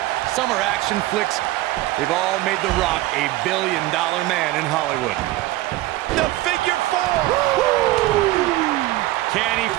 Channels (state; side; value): quieter; left; 17.2 dB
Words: summer action flicks. They've all made The Rock a billion-dollar man in Hollywood. The figure four! Can he